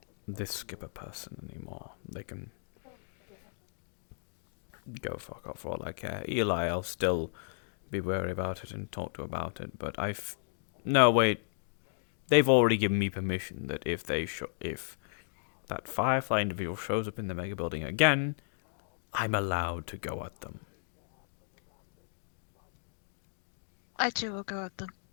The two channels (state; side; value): silent; right; digital silence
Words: this skipper person anymore. They can go fuck off for all I care. Eli, I'll still be wary about it and talk to about it, but no, wait. They've already given me permission that if that Firefly individual shows up in the mega building again, I'm allowed to go at them. I too will go at them.